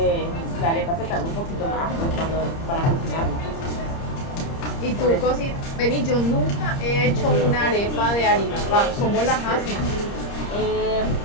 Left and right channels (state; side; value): late; right; 30 ms